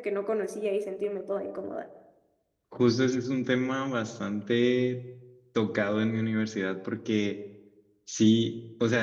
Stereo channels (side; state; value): both; identical; correlation 1.00